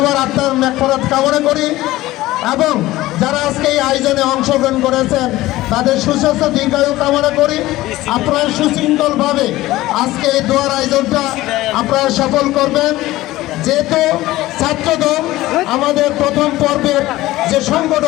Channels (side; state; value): right; quieter; 17.1 dB